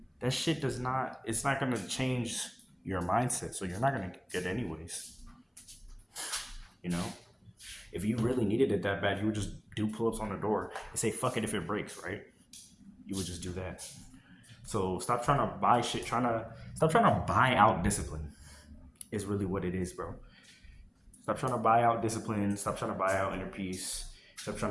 That shit does not, it's not gonna change your mindset. So you're not gonna get it anyways. You know? If you really needed it that bad, you would just do pull-ups on the door and say fuck it if it breaks, right? You would just do that. So stop trying to buy shit, stop trying to buy out discipline is really what it is, bro. Stop trying to buy out discipline. Stop trying to buy out inner peace. Stop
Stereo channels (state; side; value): identical; both; correlation 1.00